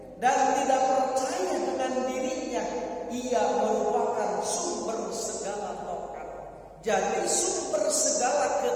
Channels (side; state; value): both; identical; correlation 1.00